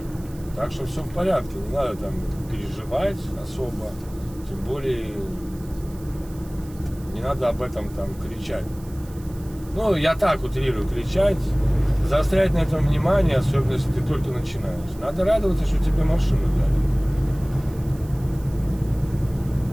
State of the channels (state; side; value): noise; right; hiss, 23 dB below the sound